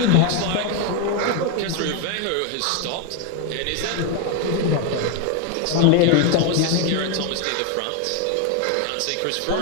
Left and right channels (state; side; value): different; both; correlation 0.01